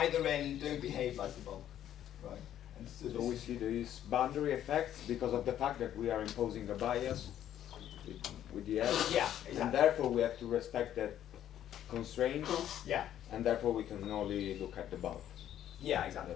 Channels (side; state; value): right; quieter; 11.1 dB